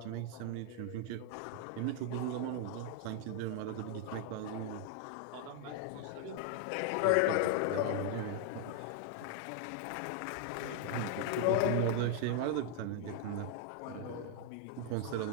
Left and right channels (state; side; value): different; both; correlation 0.00